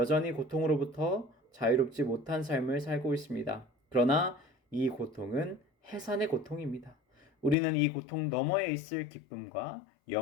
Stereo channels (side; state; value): right; drops out; at 7.6 s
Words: 고통으로부터 자유롭지 못한 삶을 살고 있습니다. 그러나 이 고통은 해산의 고통입니다. 우리는 이 고통 너머에 있을 기쁨과